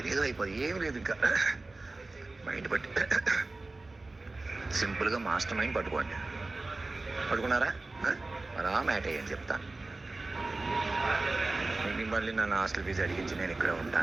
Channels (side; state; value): left; quieter; 3.2 dB